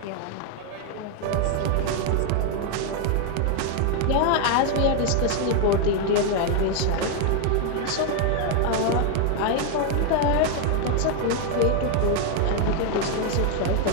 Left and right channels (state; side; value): different; both; correlation 0.00